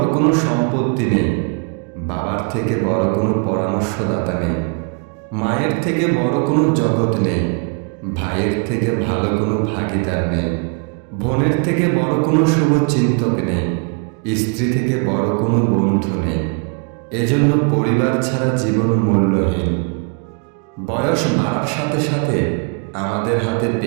কোনো সম্পত্তি নেই, বাবার থেকে বড় কোনো পরামর্শদাতা নেই, মায়ের থেকে বড় কোনো জগৎ নেই, ভাইয়ের থেকে ভালো কোনো ভাগিদার নেই, বোনের থেকে বড় কোনো শুভচিন্তক নেই, স্ত্রী থেকে বড় কোনো বন্ধু নেই। এজন্য পরিবার ছাড়া জীবন মূল্যহীন। বয়স বাড়ার সাথে সাথে আমাদের হাতে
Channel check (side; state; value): left; quieter; 35.7 dB